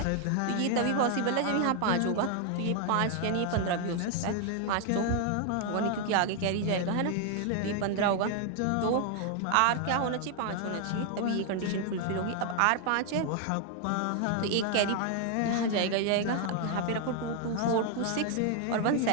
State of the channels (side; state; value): both; different; correlation 0.00